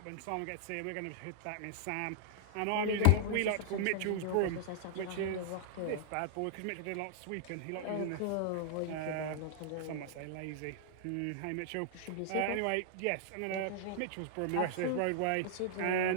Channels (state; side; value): different; both; correlation -0.01